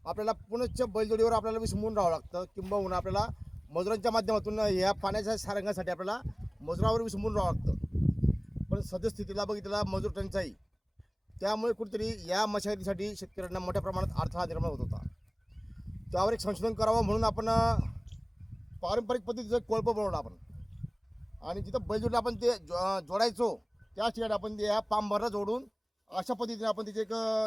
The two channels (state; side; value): identical; both; correlation 1.00